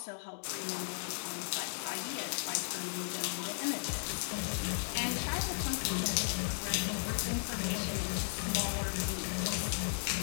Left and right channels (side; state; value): right; silent; digital silence